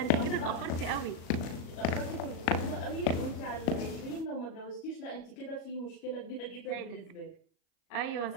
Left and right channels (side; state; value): right; late; 37 ms